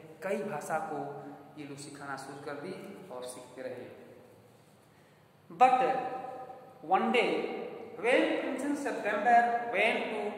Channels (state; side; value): identical; both; correlation 1.00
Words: कई भाषा को ये लोग सिखाना शुरू कर दी और सीखते रहे। But one day, when Princess September went to